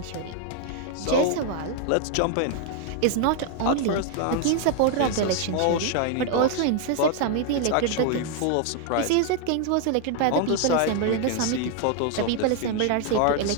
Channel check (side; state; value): both; different; correlation 0.00